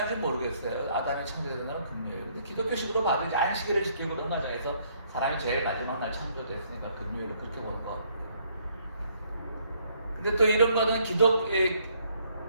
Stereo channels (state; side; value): inverted; both; correlation -0.67